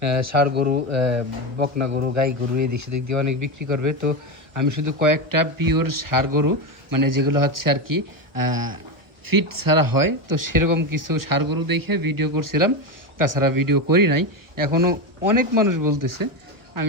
ষাঁড় গরু, বকনা গরু, গাই গরু এদিক সেদিক দিয়ে অনেক বিক্রি করবে। তো আমি শুধু কয়েকটা পিওর ষাঁড় গরু, মানে যেগুলো হচ্ছে আর কি ফিট ছাড়া হয়, তো সেরকম কিছু ষাঁড় গরু দেখে ভিডিও করছিলাম। তাছাড়া ভিডিও করি নাই। এখনও অনেক মানুষ বলতেছে।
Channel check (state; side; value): late; left; 1.3 ms